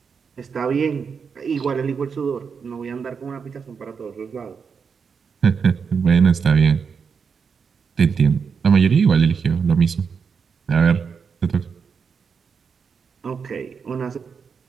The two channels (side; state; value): left; quieter; 6.0 dB